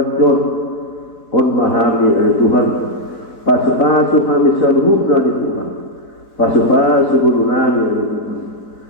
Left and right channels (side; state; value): right; late; 4.4 ms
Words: on mahami ani Tuhan paso-paso kami sa luhug na ni Tuhan paso-paso gulo namin ani Tuhan